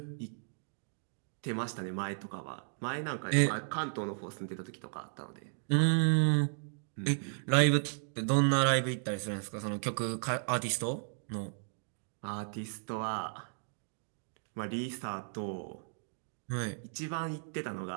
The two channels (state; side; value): silent; left; digital silence